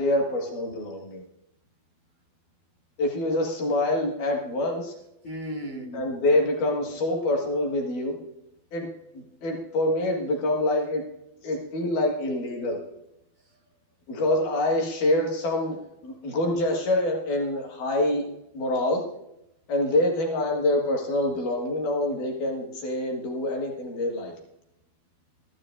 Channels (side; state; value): right; late; 12 ms